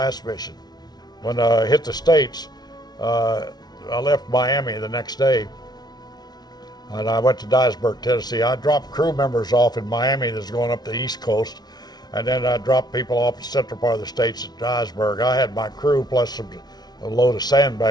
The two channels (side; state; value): right; late; 0.19 ms